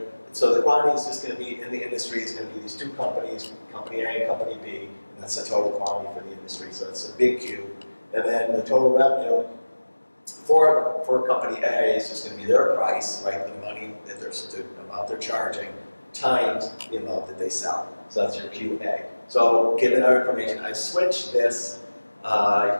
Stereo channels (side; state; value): both; inverted; correlation -1.00